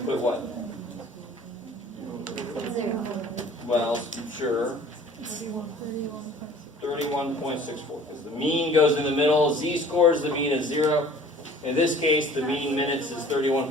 put what? Well, sure. 31.64. Because the mean goes in the middle. Z-scores, the mean is 0. In this case, the mean minutes is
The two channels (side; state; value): both; normal; correlation 0.49